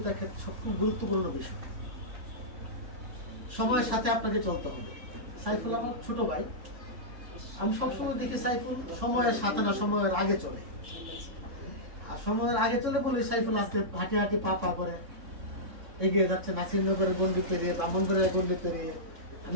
ক্ষেত্রে সবচেয়ে গুরুত্বপূর্ণ বিষয়। সময়ের সাথে আপনাকে চলতে হবে। সাইফুল আমার ছোট ভাই, আমি সবসময় দেখি সাইফুল সময়ের সাথে না সময়ের আগে চলে। আর সময়ের আগে চলে বলে সাইফুল আজকে হাঁটি হাঁটি পা পা করে এগিয়ে যাচ্ছে নাসিরনগরের গন্ডি পেরিয়ে, ব্রাহ্মণবাড়িয়ার গন্ডি পেরিয়ে।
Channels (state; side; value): late; left; 3.6 ms